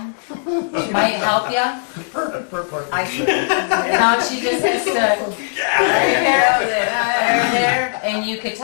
she might help you? I think. No, she just has to, right there, and you could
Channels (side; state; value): right; silent; digital silence